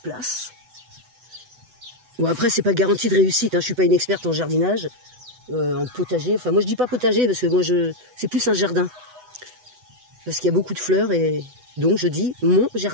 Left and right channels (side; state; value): left; late; 8.0 ms